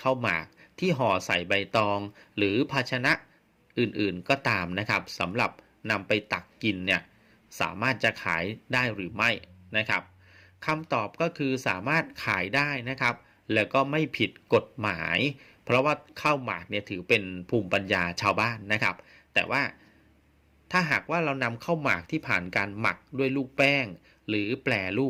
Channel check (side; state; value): both; identical; correlation 1.00